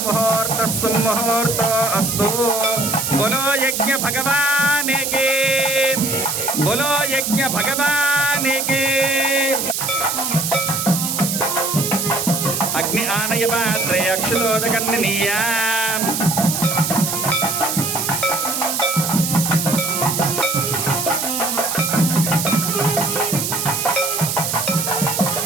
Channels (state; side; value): noise; right; hiss, 1 dB below the sound